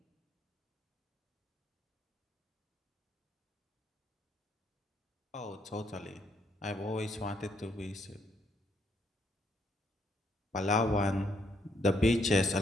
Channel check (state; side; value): normal; both; correlation 0.73